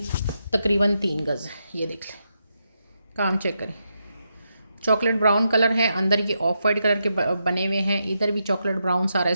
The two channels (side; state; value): both; inverted; correlation -0.84